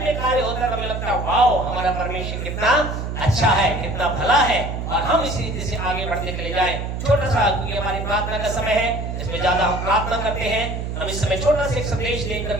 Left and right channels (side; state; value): right; noise; hum, 4 dB below the sound